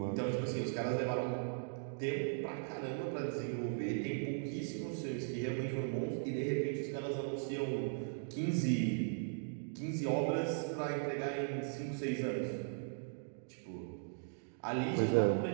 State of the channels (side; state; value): left; silent; digital silence